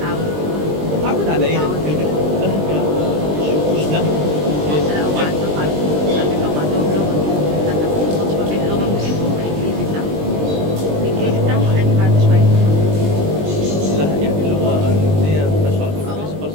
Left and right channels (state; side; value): late; left; 20 ms